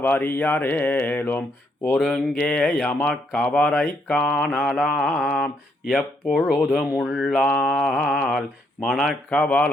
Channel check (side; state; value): both; normal; correlation 0.74